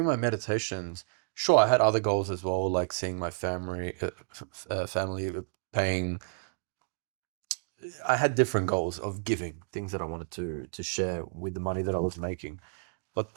my meditations, sure, I had other goals as well, like seeing my family paying. I had different goals of giving things that I wanted to share with the money that I was making. But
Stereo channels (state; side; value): silent; left; digital silence